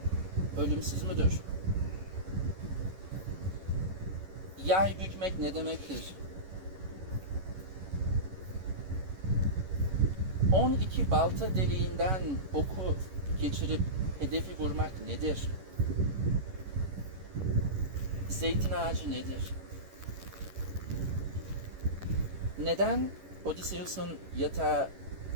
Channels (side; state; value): left; late; 11 ms